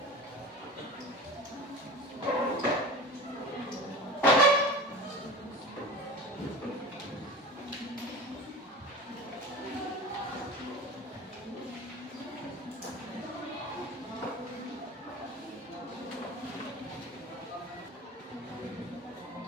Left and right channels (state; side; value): normal; both; correlation 0.34